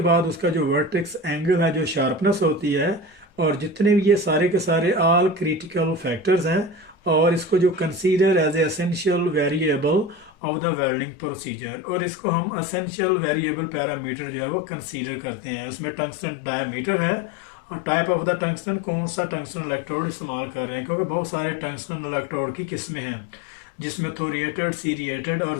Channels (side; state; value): right; drops out; at 10.3 s